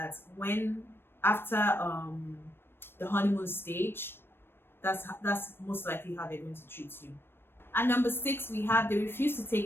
when after the honeymoon stage, that's most likely how they're going to treat you. And number 6, we have they refuse to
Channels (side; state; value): right; late; 0.10 ms